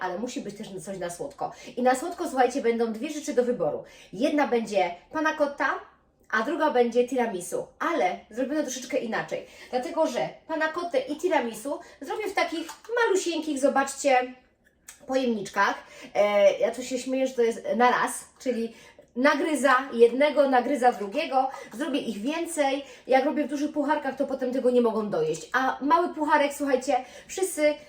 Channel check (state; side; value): identical; both; correlation 1.00